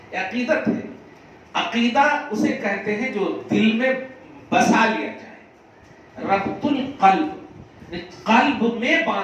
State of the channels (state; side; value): identical; both; correlation 1.00